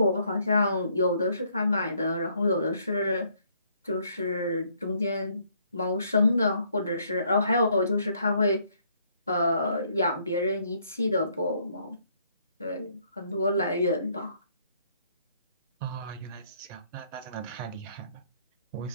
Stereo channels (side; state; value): both; inverted; correlation -0.67